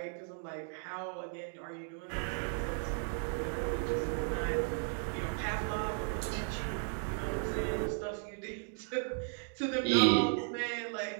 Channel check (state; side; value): silent; left; 54 dB below the other